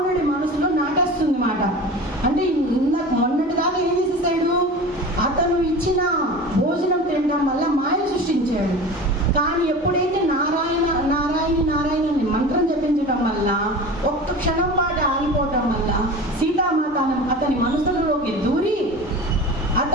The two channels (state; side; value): normal; both; correlation 0.34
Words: మనసులో నాటేస్తుంది మాట. అంటే మొన్నటి దాకా ఏం చేసేసాడు? అతను ఇచ్చిన భోజనం తినడం వల్ల మాయ సృష్టించాడు. కానీ ఎప్పుడైతే నారాయణ అని మంత్రం జపించడం వల్ల ఒక్క క్షణం పాటు ఆగిపోవటం వల్ల సీతామాత అతని మనసులోకి దూరి